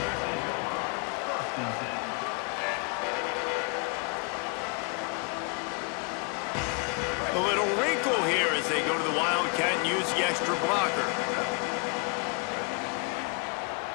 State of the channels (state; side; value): quieter; right; 35.0 dB